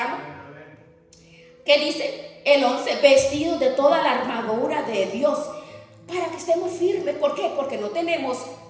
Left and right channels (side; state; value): both; identical; correlation 1.00